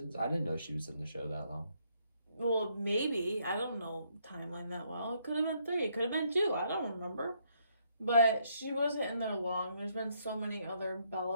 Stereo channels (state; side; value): inverted; both; correlation -0.72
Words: I didn't know she was in the show that long. Well, maybe. I don't know timeline that well. It could have been 3. It could have been 2. I don't remember. But she wasn't in there long. There's been so many other